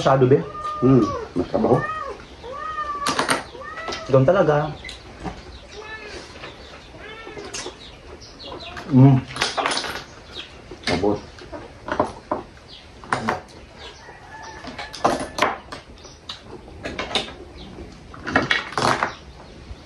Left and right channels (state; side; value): identical; both; correlation 1.00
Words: be. Mas trabaho. Doon talaga. Abot.